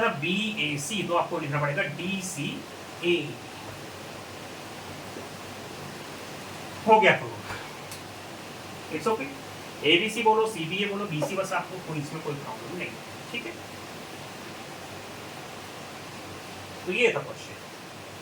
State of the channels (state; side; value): identical; both; correlation 1.00